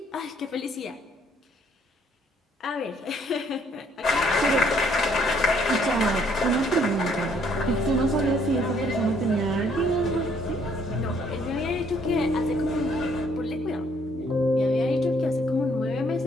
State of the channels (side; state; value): both; normal; correlation 0.65